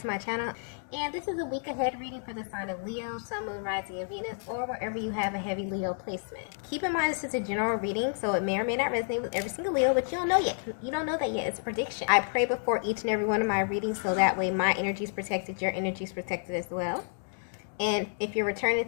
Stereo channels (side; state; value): right; silent; digital silence